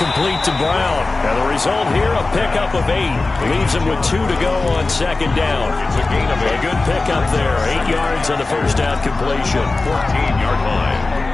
to Brown. And the result here, a pickup of 8. Leaves him with 2 to go on 2nd down. It's a gain of 8. A good pickup there. 8 yards on the first down completion. 14-yard line.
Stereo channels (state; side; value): quieter; right; 3.4 dB